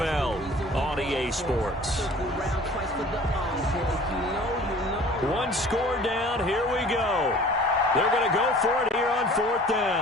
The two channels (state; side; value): normal; both; correlation 0.47